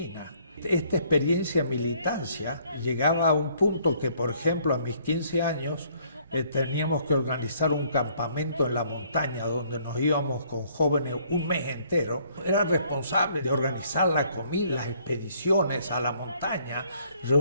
Esta experiencia de militancia llegaba a un punto que, por ejemplo, a mis 15 años teníamos que organizar un campamento en la montaña donde nos íbamos con jóvenes un mes entero. Era responsable de organizar la comida, las expediciones a la montaña,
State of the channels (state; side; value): inverted; both; correlation -0.63